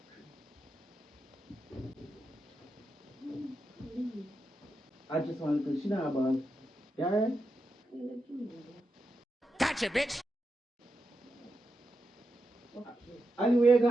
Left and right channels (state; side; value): normal; both; correlation 0.87